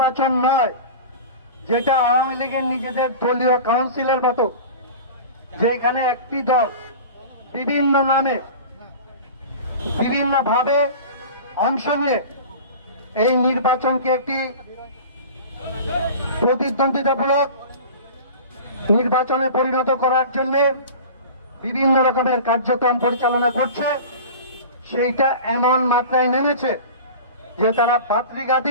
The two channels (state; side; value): inverted; both; correlation -0.36